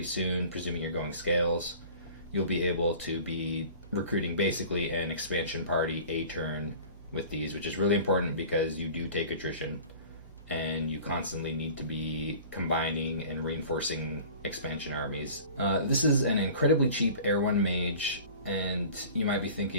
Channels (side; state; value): both; inverted; correlation -0.43